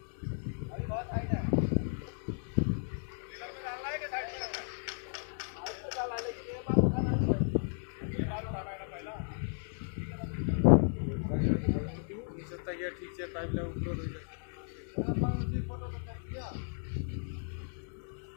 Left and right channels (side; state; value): right; silent; digital silence